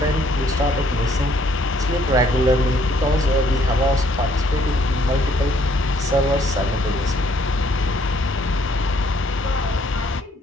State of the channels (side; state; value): both; normal; correlation 0.65